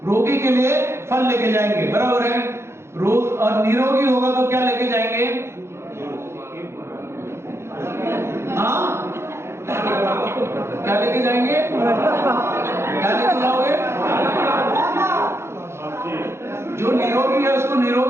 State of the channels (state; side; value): late; left; 0.13 ms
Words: रोगी के लिए फल लेके जाएंगे, बराबर है। रोग और निरोगी होगा तो क्या लेके जाएंगे? हाँ, क्या लेके जाएंगे? क्या लेके जाओगे? जो निरोगी है उसको